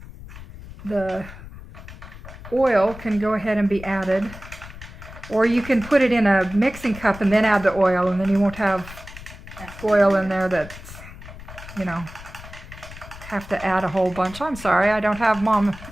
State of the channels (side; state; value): left; noise; rumble, 15 dB below the sound